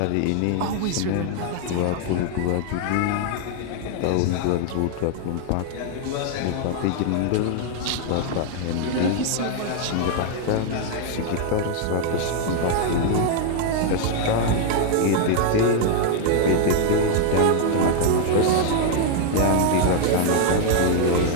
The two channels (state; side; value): different; both; correlation 0.00